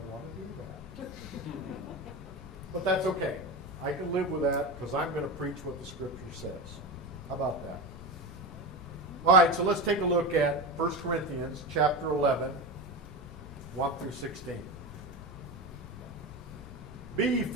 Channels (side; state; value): both; normal; correlation 0.22